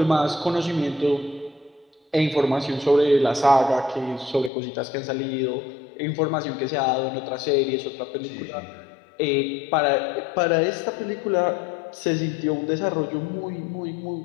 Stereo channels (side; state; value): right; drops out; at 4.5 s